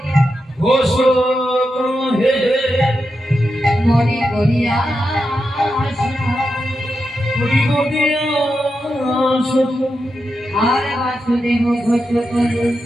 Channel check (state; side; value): normal; both; correlation 0.87